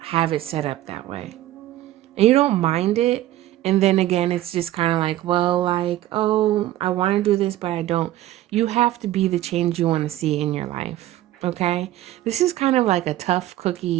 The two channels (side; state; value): left; quieter; 14.4 dB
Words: it set up that way. And you don't mind it. And then again, it's just kind of like, well, like, oh, I want to do this, but I don't. You have to be the change you want to see in your life. Okay? This is kind of like a tough